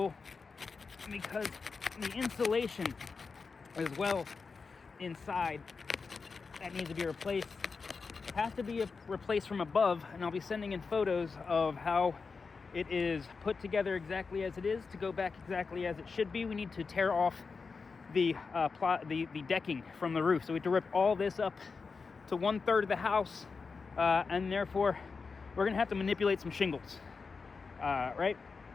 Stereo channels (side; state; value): right; quieter; 4.8 dB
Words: because the insulation as well inside that needs to be replaced has to be replaced from above, and I'll be sending in photos of how it is put together exactly as it is to go back exactly as it should be. We need to tear off the decking from the roof, so we have to rip all this up to 1/3 of the house, and therefore we're gonna have to manipulate some shingles, right?